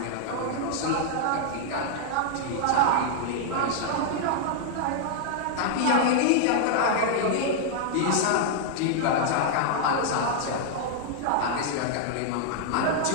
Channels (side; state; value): both; different; correlation -0.01